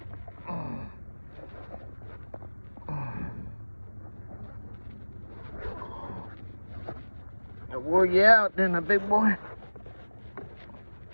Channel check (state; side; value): inverted; both; correlation -1.00